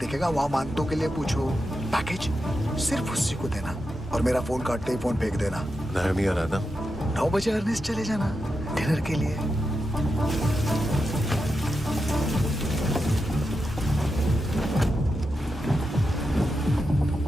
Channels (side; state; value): both; normal; correlation 0.88